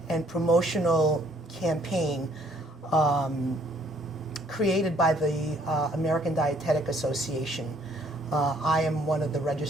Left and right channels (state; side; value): normal; both; correlation 0.62